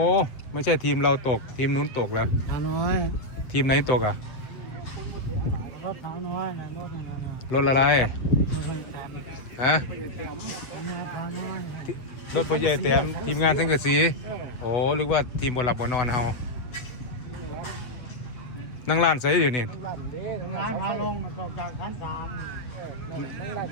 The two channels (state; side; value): late; right; 7.5 ms